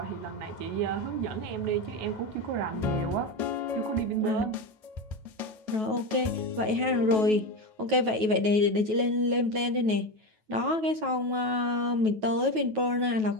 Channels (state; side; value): late; left; 9.3 ms